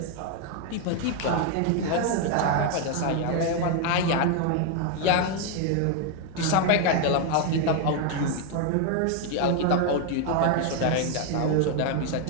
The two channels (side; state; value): both; different; correlation 0.01